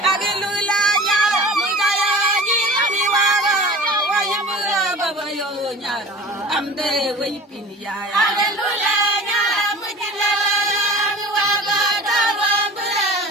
amde way pin yaay hallelujah ñaara mu jilla mi waga dawa mbara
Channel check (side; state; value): both; normal; correlation 0.39